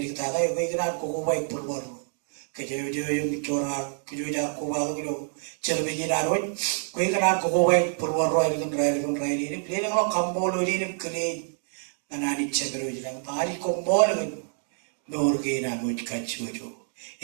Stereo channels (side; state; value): left; silent; digital silence